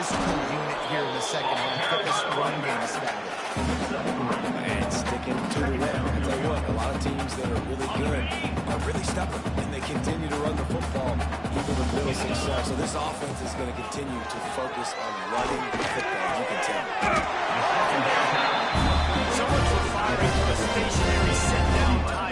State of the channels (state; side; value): identical; both; correlation 1.00